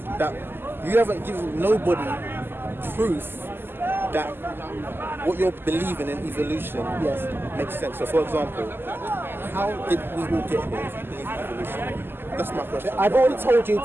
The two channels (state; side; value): late; left; 0.10 ms